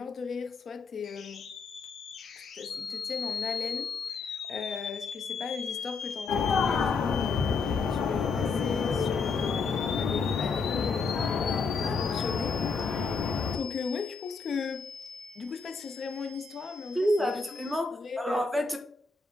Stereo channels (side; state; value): right; quieter; 4.6 dB